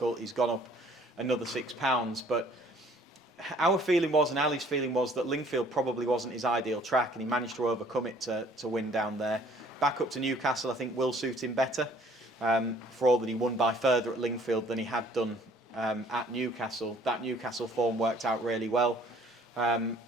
He's gone up another £6, but our feeling was, and Ali's feeling was, that Lingfield probably wasn't his ideal track, and he managed to overcome it to win down there. Back up to Newcastle I think will suit him better, for all that he won by further at Lingfield than he had done at Newcastle. That Newcastle form worked out really well, and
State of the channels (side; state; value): both; normal; correlation 0.57